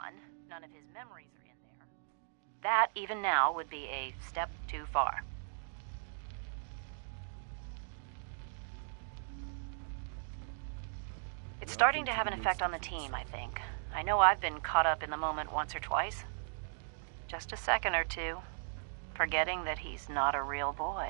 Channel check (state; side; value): silent; left; digital silence